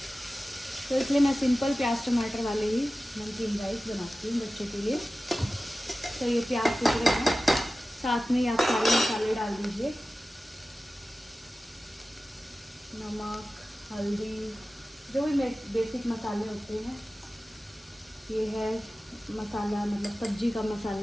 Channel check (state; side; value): normal; both; correlation 0.95